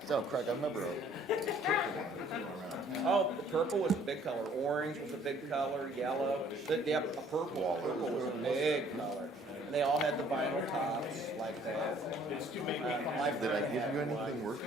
So, Craig, I remember Oh, the purple was a big color. Orange was a big color. Yellow. Yeah, a purple. Purple was a big color. And they all had the vinyl tops like that. did I give you anything worth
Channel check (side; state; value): both; normal; correlation 0.58